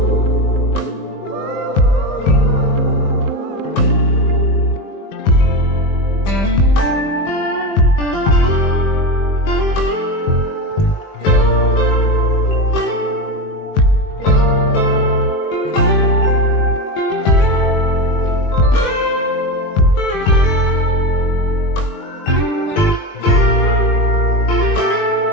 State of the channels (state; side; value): late; right; 20 ms